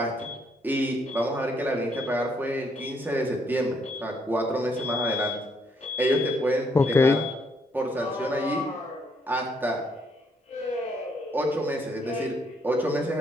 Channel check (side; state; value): both; normal; correlation 0.72